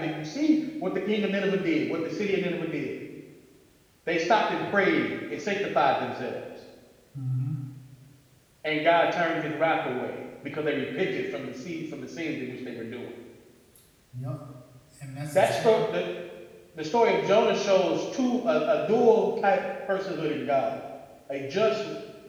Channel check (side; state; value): both; identical; correlation 1.00